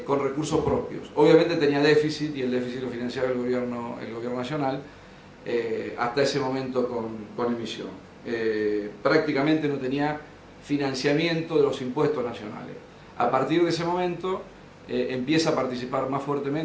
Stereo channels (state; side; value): identical; both; correlation 1.00